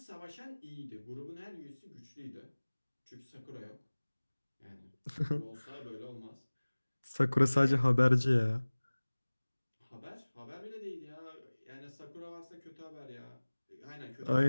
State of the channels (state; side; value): inverted; both; correlation -1.00